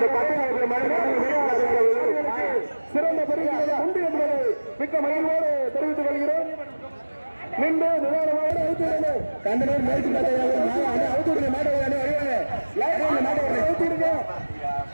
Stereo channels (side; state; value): both; inverted; correlation -1.00